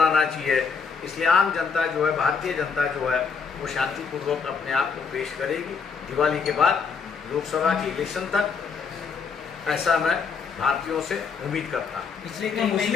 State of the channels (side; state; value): right; quieter; 5.6 dB